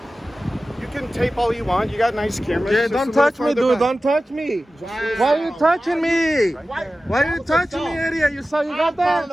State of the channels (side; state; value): both; normal; correlation 0.95